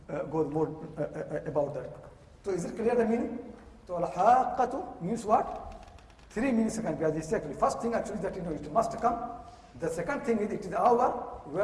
goes more about that. So is it clear the meaning? So al-haqqatu means what? 3 meanings can be exactly. First thing actually that it must come. The second thing is it is the hour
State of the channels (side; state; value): both; identical; correlation 1.00